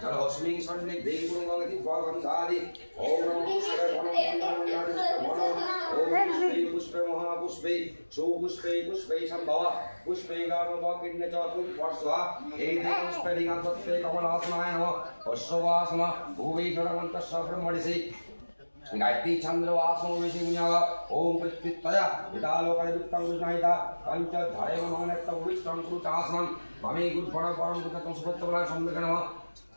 जलस्मिन् सन्निधे गुरुगंगति गंधादि ओम नमो शिवाय पुष्पे महापुष्पे सुपुष्पे पुष्पे संभव पुष्पे गार्भकिन्य च पुष्पस्वा एते पुष्पे दिगंतस्ते कमलासनाय नमः पश्ववासम भुवि जलमन्तस्य ब्रह्मणिसि गायत्री चंद्र वासो विषिमुन्यागा ओम प्रत्युत्तया विदालोकाय वित्तं विष्णाहिता पंच धारे मनोनेत्त विष्णं कृतासनं ममे गुरुफल परम कृतं सुपत्तबला सम्मेक नमः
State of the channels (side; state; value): both; inverted; correlation -1.00